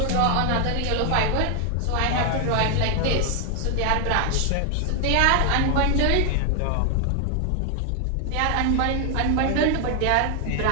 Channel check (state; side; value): different; both; correlation 0.00